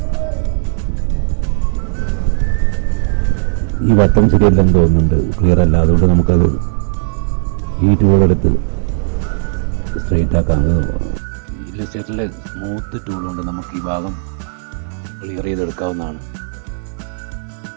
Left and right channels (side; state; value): left; silent; digital silence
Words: ഈ വട്ടം ശരിയല്ലെന്ന് തോന്നുന്നുണ്ട്, ക്ലിയർ അല്ല. അതുകൊണ്ട് നമുക്കത് ഈ ടൂളെടുത്ത് സ്ട്രെയിറ്റ് ആക്കാം. ഇല്ലസ്ട്രേറ്ററിലെ സ്മൂത്ത് ടൂൾ കൊണ്ട് നമുക്ക് ഈ ഭാഗം ക്ലിയർ ചെയ്തെടുക്കാവുന്നതാണ്.